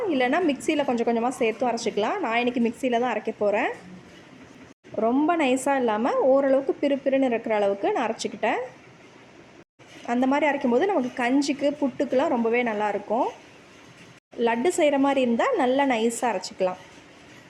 இல்லைனா மிக்சியில் கொஞ்சம் கொஞ்சமாக சேர்த்தும் அரைச்சிக்கலாம். நான் இன்றைக்கி மிக்சியில் தான் அரைக்க போகிறேன். ரொம்ப நைஸாக இல்லாமல் ஓரளவுக்கு பிறுபிறுன்னு இருக்கிற அளவுக்கு நான் அரைச்சிக்கிட்டேன். அந்த மாதிரி அரைக்கும்போது நமக்கு கஞ்சிக்கு, புட்டுக்கெலாம் ரொம்பவே நல்லாயிருக்கும். லட்டு செய்கிற மாதிரி இருந்தால் நல்லா நைஸாக அரைச்சிக்கலாம்.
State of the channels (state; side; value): identical; both; correlation 1.00